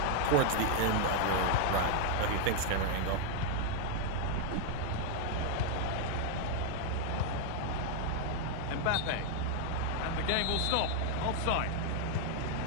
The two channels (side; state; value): both; different; correlation 0.00